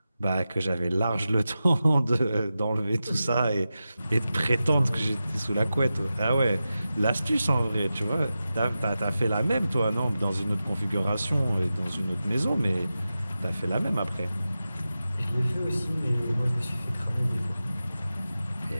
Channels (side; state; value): both; inverted; correlation -0.93